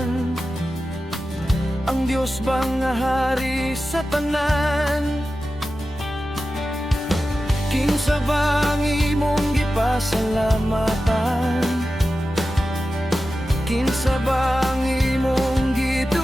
Ang Diyos ba nga hari sa tanan? Kinsa ba ang imong gipasalamatan? Kinsa ba ang imong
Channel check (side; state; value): both; normal; correlation 0.93